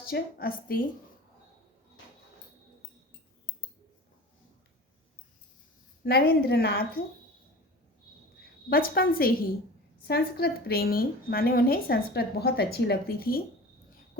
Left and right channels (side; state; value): both; normal; correlation 0.37